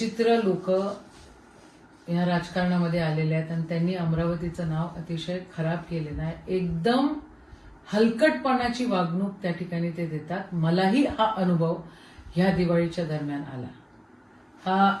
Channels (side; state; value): both; identical; correlation 1.00